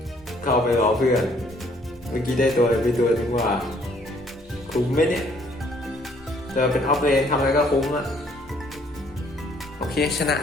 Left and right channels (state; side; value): normal; both; correlation 0.63